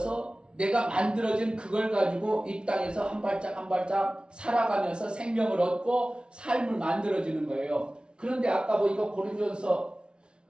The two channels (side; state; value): left; late; 0.056 ms